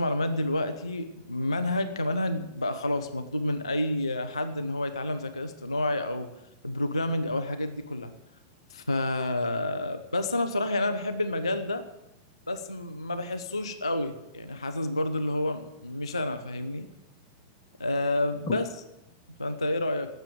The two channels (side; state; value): both; inverted; correlation -0.83